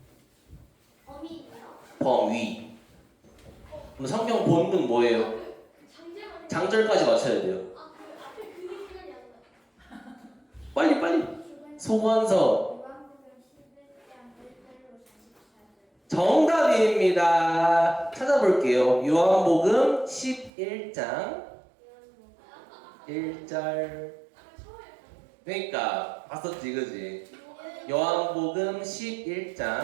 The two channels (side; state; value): left; drops out; at 20.5 s